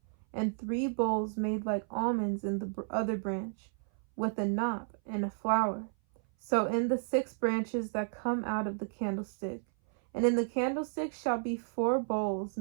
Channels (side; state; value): left; silent; 56 dB below the other